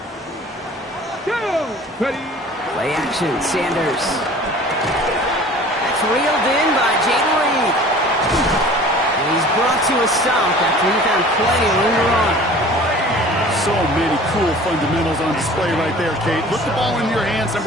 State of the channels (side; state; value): both; normal; correlation 0.45